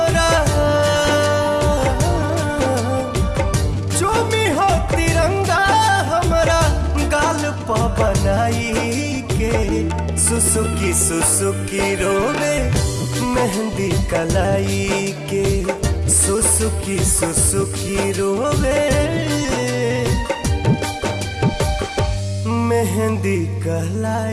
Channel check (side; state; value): both; identical; correlation 1.00